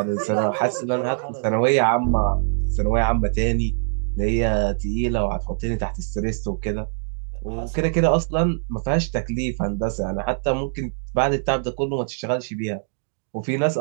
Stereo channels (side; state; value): left; silent; digital silence